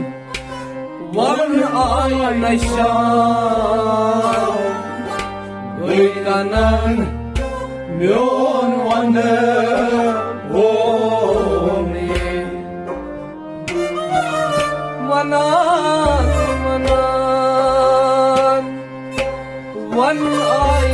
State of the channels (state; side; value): identical; both; correlation 1.00